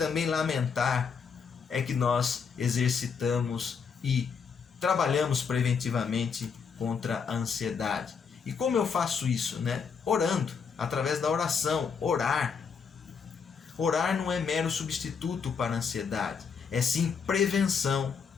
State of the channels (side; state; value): right; quieter; 6.0 dB